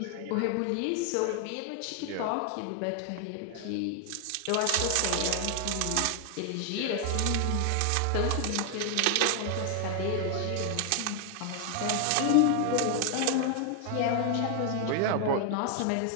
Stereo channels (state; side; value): different; both; correlation 0.00